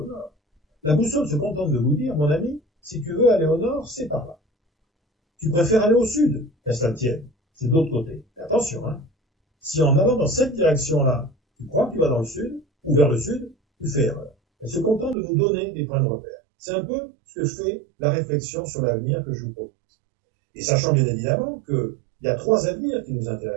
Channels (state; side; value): drops out; left; at 15.2 s